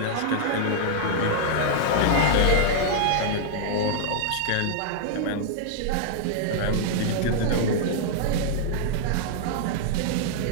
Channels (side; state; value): both; different; correlation -0.01